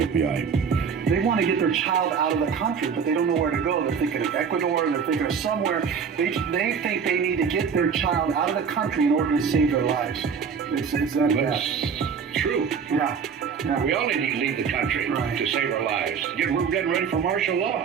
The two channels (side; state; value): left; quieter; 6.5 dB